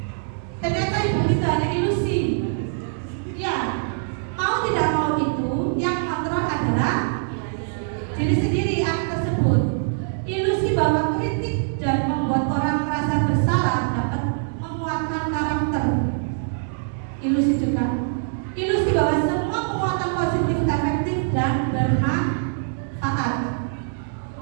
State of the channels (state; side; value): silent; left; digital silence